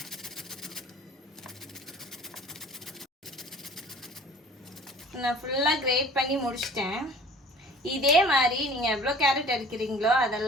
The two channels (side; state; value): both; normal; correlation 0.48